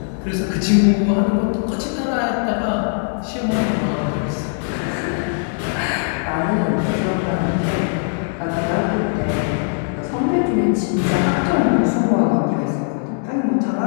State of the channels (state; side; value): silent; right; digital silence